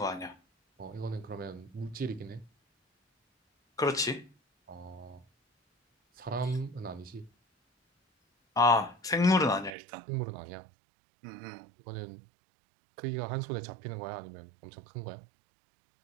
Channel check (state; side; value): drops out; left; at 9.8 s